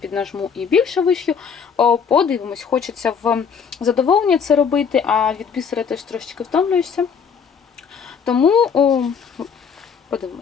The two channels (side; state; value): right; quieter; 6.6 dB